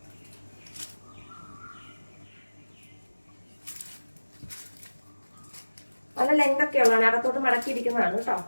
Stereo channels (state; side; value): inverted; both; correlation -1.00